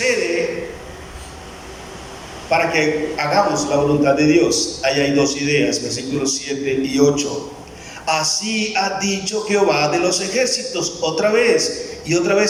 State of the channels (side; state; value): both; identical; correlation 1.00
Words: para que hagamos la voluntad de Dios? Ahí hay dos ideas, versículos 7 y 8. Así ha dicho Jehová de los ejércitos, otra vez. ¿Y otra